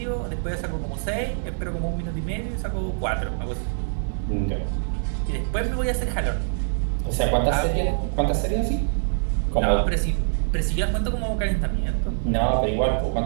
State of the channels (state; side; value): silent; left; digital silence